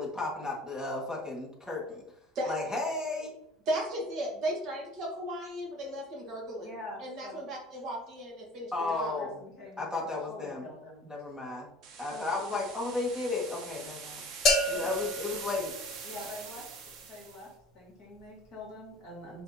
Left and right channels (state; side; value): normal; both; correlation 0.45